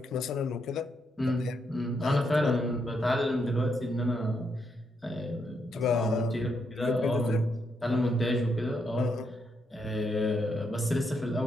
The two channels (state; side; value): normal; both; correlation 0.79